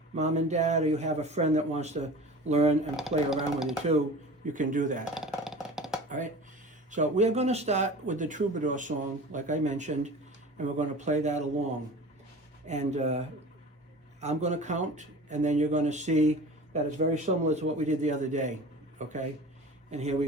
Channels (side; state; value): both; normal; correlation 0.38